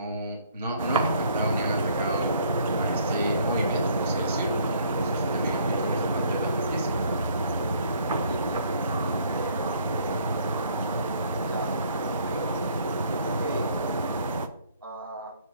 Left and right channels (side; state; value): both; inverted; correlation -0.61